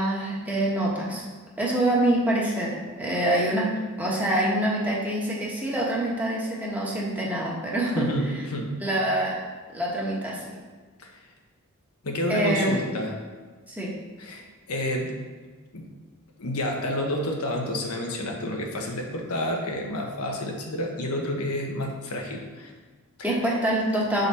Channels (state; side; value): normal; both; correlation 0.34